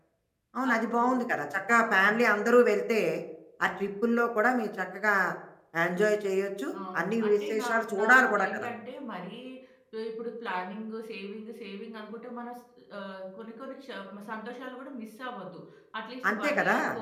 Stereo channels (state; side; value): identical; both; correlation 1.00